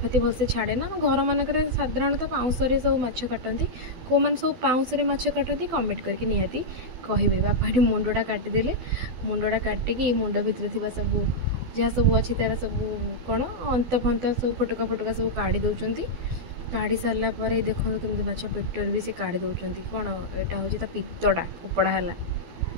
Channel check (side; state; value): left; late; 12 ms